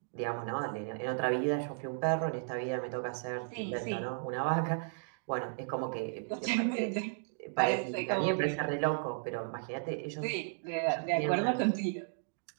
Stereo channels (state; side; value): silent; left; digital silence